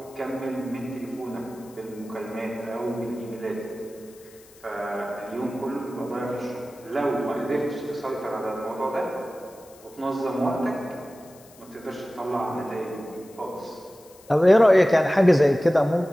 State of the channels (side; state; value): left; noise; hiss, 25 dB below the sound